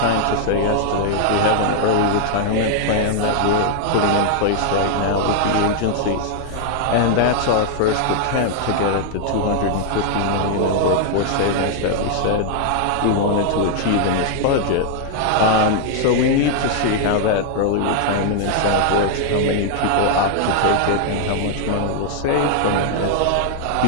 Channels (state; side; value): different; both; correlation 0.00